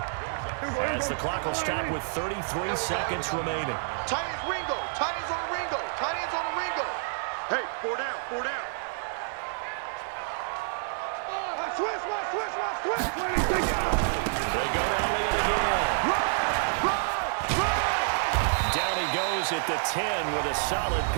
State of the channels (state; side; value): silent; left; 59 dB below the other